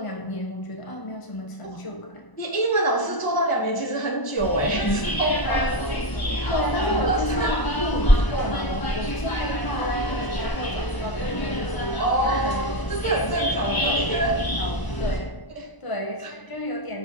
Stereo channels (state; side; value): late; right; 1.0 ms